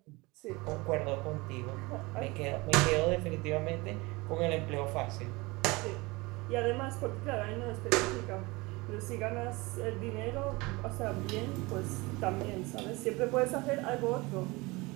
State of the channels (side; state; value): left; quieter; 23.8 dB